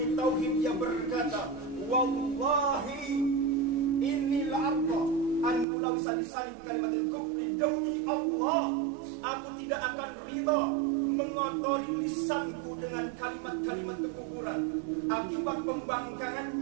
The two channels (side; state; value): left; drops out; at 5.7 s